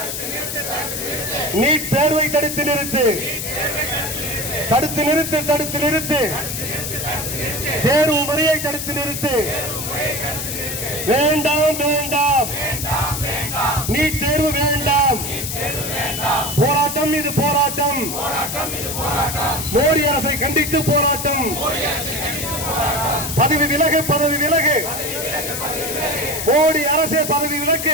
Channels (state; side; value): noise; left; hiss, 4 dB below the sound